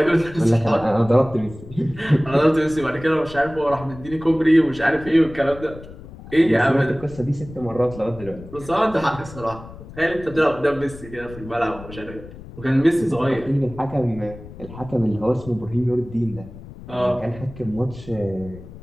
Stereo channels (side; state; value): left; noise; rumble, 16 dB below the sound